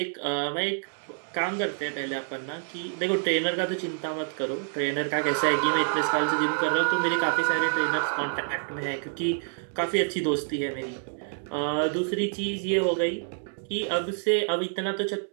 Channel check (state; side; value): silent; left; digital silence